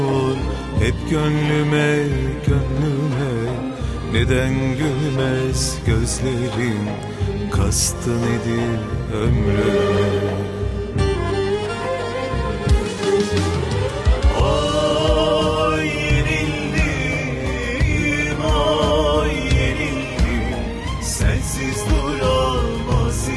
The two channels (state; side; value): identical; both; correlation 1.00